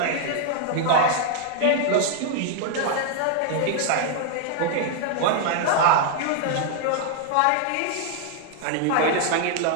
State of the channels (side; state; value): both; different; correlation 0.00